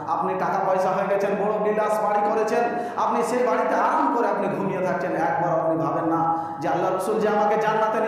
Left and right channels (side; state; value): both; identical; correlation 1.00